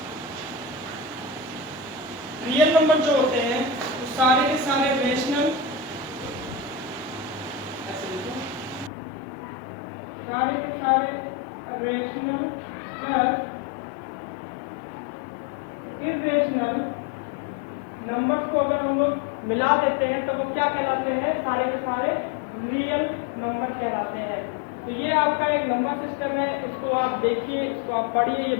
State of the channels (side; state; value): right; drops out; at 8.9 s